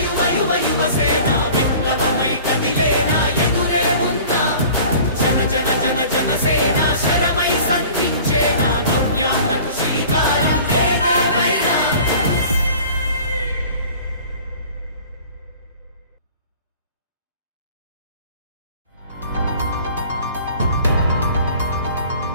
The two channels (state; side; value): inverted; both; correlation -0.45